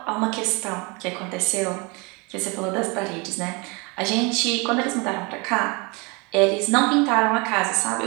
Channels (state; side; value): quieter; left; 29.0 dB